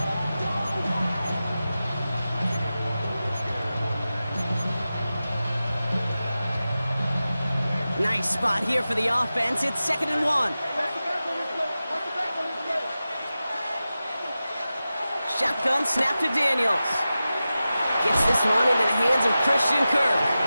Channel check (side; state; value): both; inverted; correlation -0.94